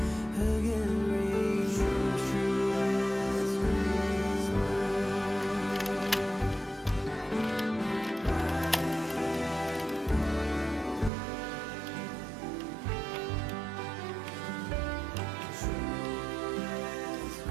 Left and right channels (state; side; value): drops out; left; at 11.1 s